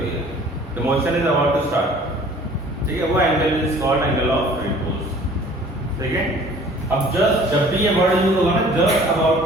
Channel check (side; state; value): both; normal; correlation 0.50